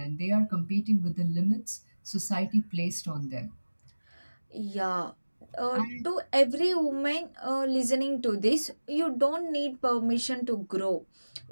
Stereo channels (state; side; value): inverted; both; correlation -1.00